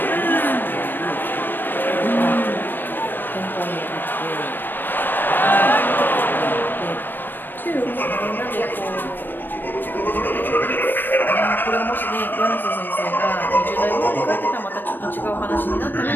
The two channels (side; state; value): right; late; 0.093 ms